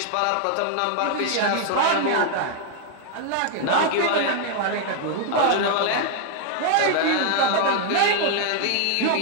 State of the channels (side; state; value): both; different; correlation 0.00